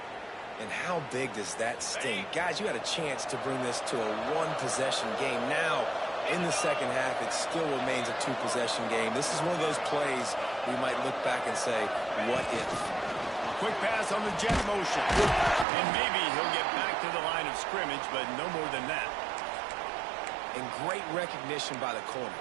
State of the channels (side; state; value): left; drops out; at 15.7 s